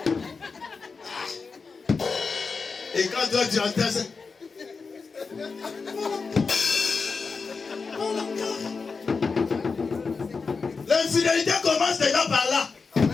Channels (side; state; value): right; quieter; 4.7 dB